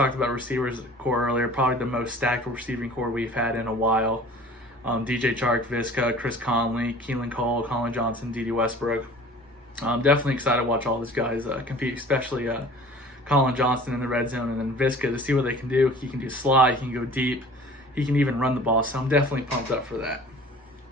about receivers core earlier. Probably the most stacked receiving core we've had in a while. DJ Chark, Viska, Chris Conley, Keelan Cole, Colin Johnson, Dede Westbrook. I'm definitely excited to watch all these guys compete, especially Colin Johnson in the red zone, and then Viska, to see what they can do. He can do slide, he can go deep, he can even run the ball, so I'm definitely pumped up for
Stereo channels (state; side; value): normal; both; correlation 0.45